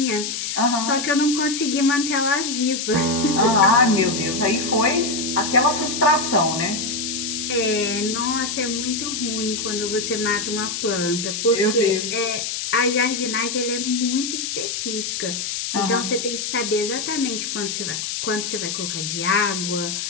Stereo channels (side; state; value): left; noise; hiss, 3 dB below the sound